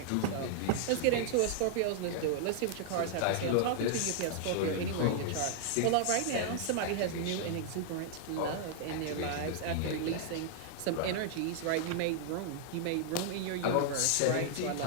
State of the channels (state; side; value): different; both; correlation -0.01